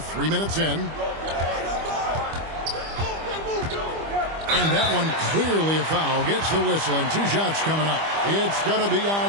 minutes in. And that one clearly a foul. Gets the whistle, and 2 shots coming up. It's going to be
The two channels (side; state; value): left; late; 25 ms